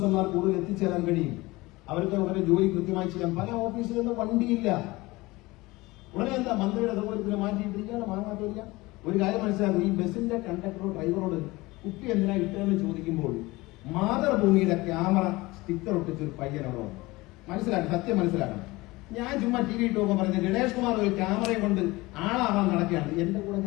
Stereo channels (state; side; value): quieter; right; 21.3 dB